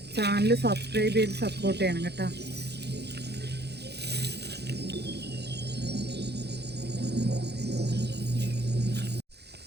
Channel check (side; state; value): left; late; 0.48 ms